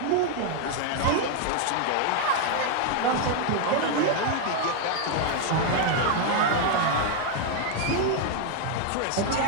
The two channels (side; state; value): both; different; correlation 0.01